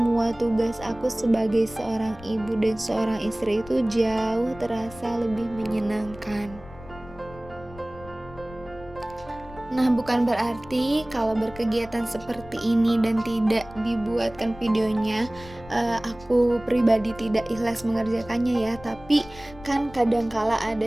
tugas aku sebagai seorang ibu dan seorang istri itu jauh terasa lebih menyenangkan. Nah, bukan berarti kalau berkegiatan seperti ini dan tidak dibuatkan videonya, aku pribadi tidak ikhlas mengerjakannya ya, tapi kan kadangkala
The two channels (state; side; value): noise; left; rumble, 18 dB below the sound